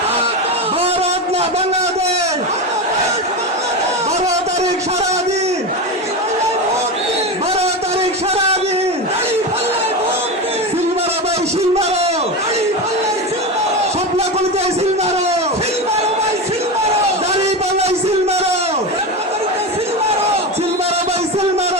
ভারত না বাংলাদেশ, 12 তারিখ সারাদিন, 12 তারিখ সারাদিন, সিলমারো ভাই সিলমারো, স্বপ্ন করতে সিলমারো, দাড়ি পাল্লাই সিলমারো, সিলমারো ভাই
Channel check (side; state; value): both; normal; correlation 0.19